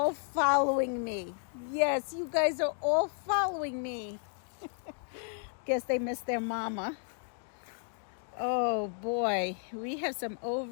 following me. Yes, you guys are all following me. Guess they missed their mama. Oh boy, we have some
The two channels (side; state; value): right; silent; 56 dB below the other